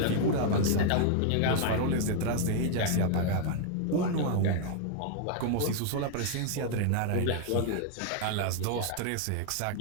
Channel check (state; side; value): different; both; correlation 0.00